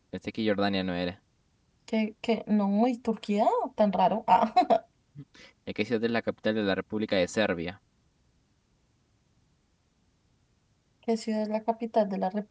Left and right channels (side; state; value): both; identical; correlation 1.00